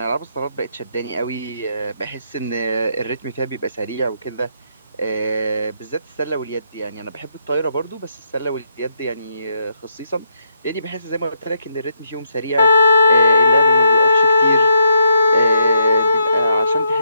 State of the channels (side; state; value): both; inverted; correlation -0.77